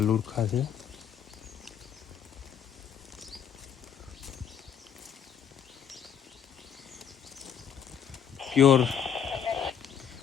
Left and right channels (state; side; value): quieter; right; 8.5 dB